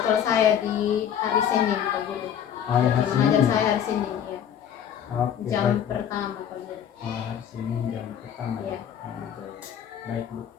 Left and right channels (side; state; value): right; quieter; 9.1 dB